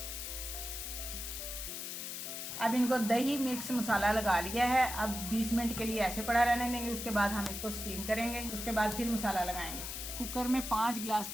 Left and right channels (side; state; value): left; noise; hiss, 6 dB below the sound